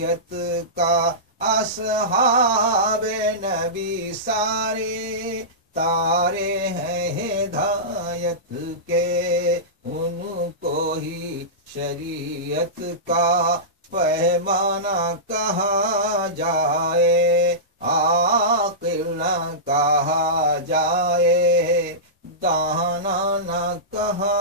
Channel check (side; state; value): both; normal; correlation -0.18